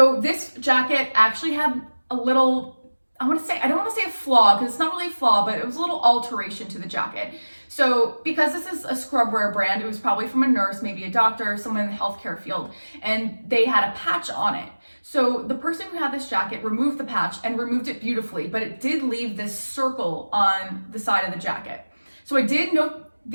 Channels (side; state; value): both; inverted; correlation -1.00